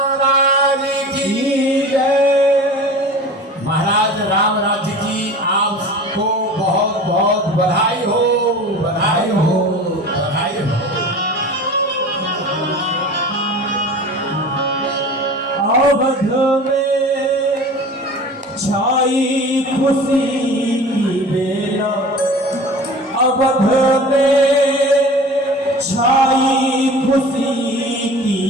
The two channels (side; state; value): both; normal; correlation 0.38